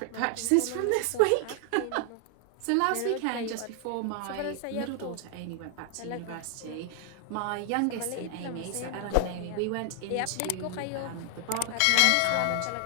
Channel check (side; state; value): both; different; correlation 0.00